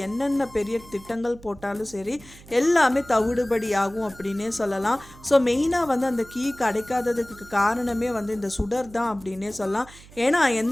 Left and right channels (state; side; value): noise; right; hum, 21 dB below the sound